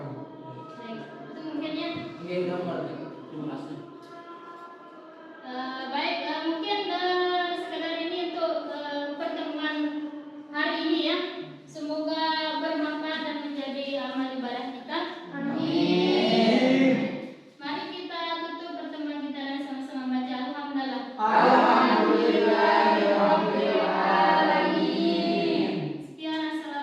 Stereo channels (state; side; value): identical; both; correlation 1.00